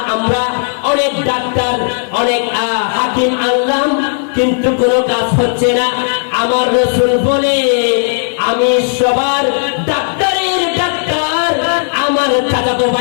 আমরা অনেক ডাক্তার, অনেক হাকিম আনলাম, কিন্তু কোনো কাজ হচ্ছে না। আমার রাসূল বলে, আমি সবার ডাক্তারের ডাক্তার, আমার চাচাতো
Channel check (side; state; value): right; silent; digital silence